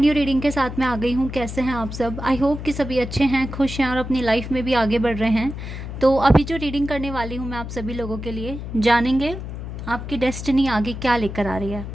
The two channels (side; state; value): left; noise; hum, 8 dB below the sound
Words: reading के साथ मैं आ गई हूँ। कैसे हैं आप सब? आई होप कि सभी अच्छे हैं, खुश हैं और अपनी लाइफ में भी आगे बढ़ रहे हैं। तो अभी जो रीडिंग करने वाली हूँ मैं आप सभी लोगों के लिए, जानेंगे आपकी डेस्टिनी आगे क्या लेकर आ रही है।